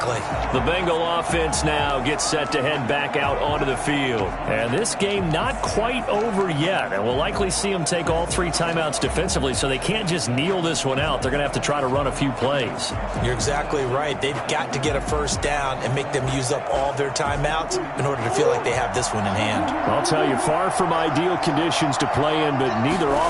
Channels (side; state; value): both; identical; correlation 1.00